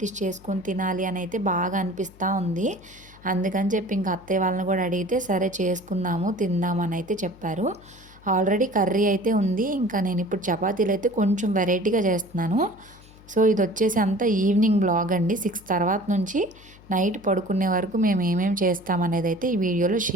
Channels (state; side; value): noise; left; hum, 23 dB below the sound